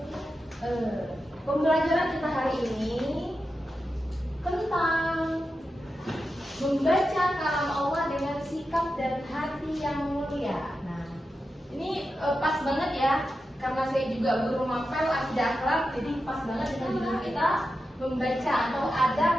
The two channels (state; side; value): normal; both; correlation 0.90